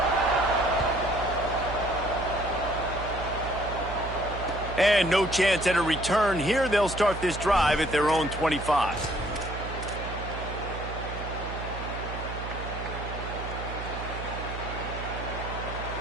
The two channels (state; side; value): noise; right; hum, 8 dB below the sound